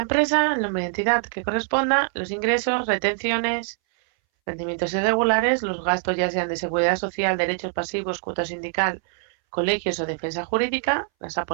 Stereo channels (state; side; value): silent; left; 61 dB below the other